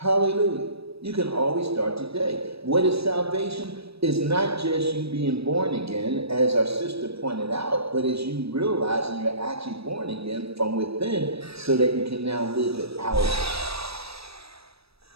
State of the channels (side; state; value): left; late; 0.78 ms